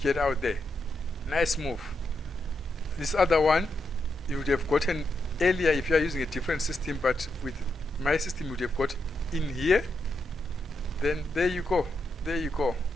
get out there. Nice move. This other one, you would have gotten earlier if you are using a different system, but with my system, you would have got in here. Then there you go. There you go.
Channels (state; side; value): normal; both; correlation 0.82